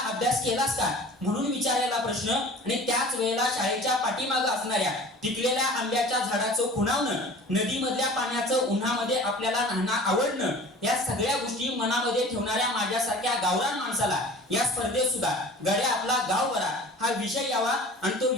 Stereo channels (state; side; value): normal; both; correlation 0.43